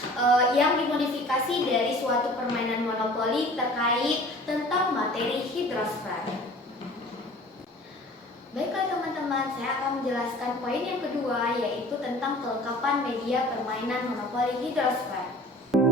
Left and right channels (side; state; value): both; normal; correlation 0.46